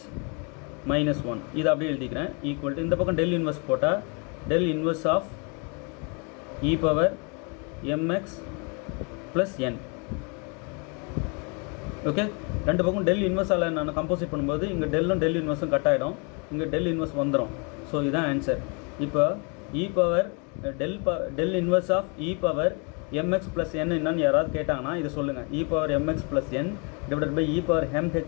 - 1 இது அப்படியே எழுதிக்கிறேன். ஈக்குவல் டு இந்த பக்கம் டெல் இன்வர்ஸ் போட்டால் del inverse of e power mx + n. Okay. ரெண்டு பக்கம் டெல் இன்வெர்ஸால் நான் கம்போசிட் பண்ணும்போது இங்கே டெல் இன்வெர்ஸும் கட் ஆகிடும், இங்கே டெல் இன்வெர்ஸ் வந்துடும். ஸோ இதுதான் ஆன்சர். இப்போ e power del inverse of e power mx + n என்னன்னு யாராவது கேட்டாங்கன்னா இது சொல்லுங்கள், e power mx + n divided by e power mh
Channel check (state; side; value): quieter; right; 34.6 dB